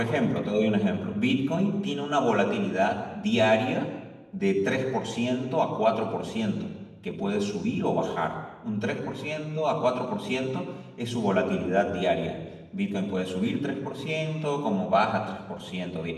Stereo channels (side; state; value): both; identical; correlation 1.00